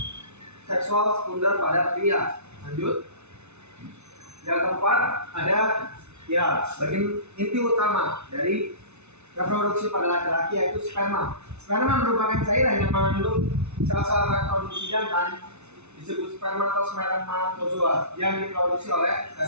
seksual sekunder pada pria. Lanjut. Yang keempat ada bagian inti utama dari reproduksi pada laki-laki yaitu sperma. Sperma merupakan cairan yang mengandung sel-sel reproduksi jantan disebut spermatozoa yang diproduksi oleh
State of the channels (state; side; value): late; left; 0.81 ms